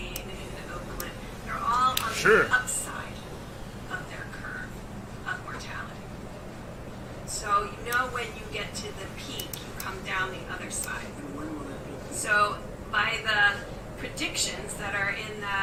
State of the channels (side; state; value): both; identical; correlation 1.00